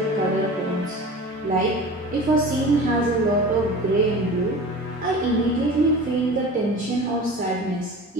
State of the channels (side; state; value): both; normal; correlation 0.36